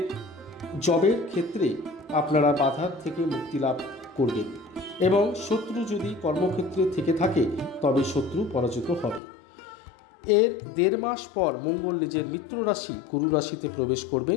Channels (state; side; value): drops out; right; at 9.2 s